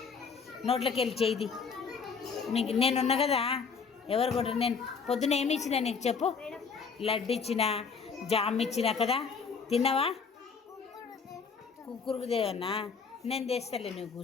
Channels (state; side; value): quieter; right; 5.5 dB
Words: నోట్లోకి వెళ్ళి చేయి. నేనున్నా కదా, ఎవరు కొడతారు? నేను పొద్దున ఏమి ఇచ్చినా నీకు చెప్పు? లడ్డు ఇచ్చిన, జామ్ ఇచ్చిన కదా, తిన్నావా? కుక్కురుకు దేవన్నా, నేను తెస్తాలే, నువ్వు